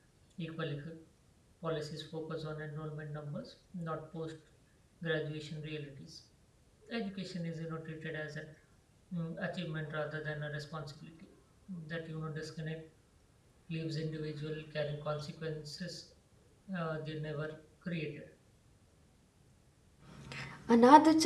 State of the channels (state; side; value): identical; both; correlation 1.00